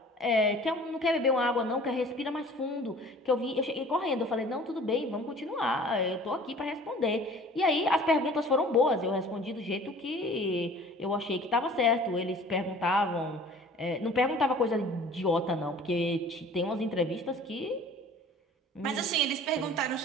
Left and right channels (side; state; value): both; normal; correlation 0.47